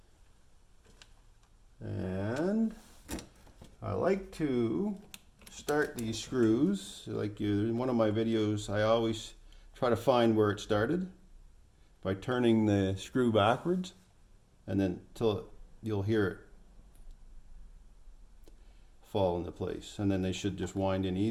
And I like to start these screws like in one of my videos. I always try to find where it started by turning the screw backwards, and then till you'll hear it fall into place, and then they should just wind in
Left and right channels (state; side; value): identical; both; correlation 1.00